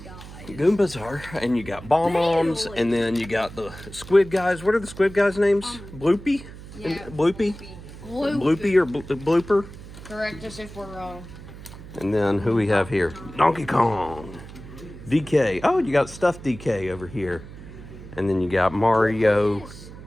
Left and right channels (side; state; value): right; noise; hum, 15 dB below the sound